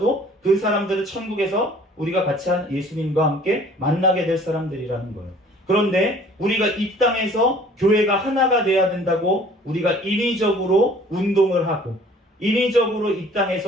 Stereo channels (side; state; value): both; normal; correlation 0.52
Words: 그 사람들은 천국에서 우리가 같이 한 예수님과 함께 만나게 될 사람들이라는 거예요. 그런데 우리가 이 땅에서 교회가 하나가 돼야 된다고 우리가 인위적으로 운동을 하고 인위적으로 이